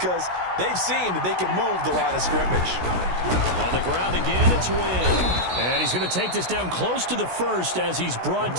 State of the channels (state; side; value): late; left; 16 ms